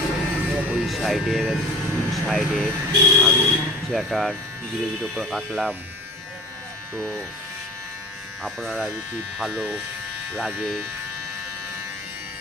ওই সাইডে আমি ছেলেটার জিরো জিরো করে কাটলাম। তো আপনারা যদি ভালো লাগে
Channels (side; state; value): both; normal; correlation 0.39